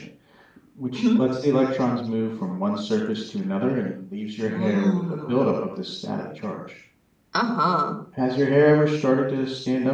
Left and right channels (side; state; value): both; identical; correlation 1.00